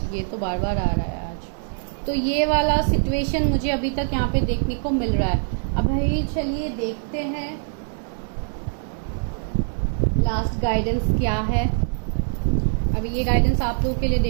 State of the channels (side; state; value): left; silent; digital silence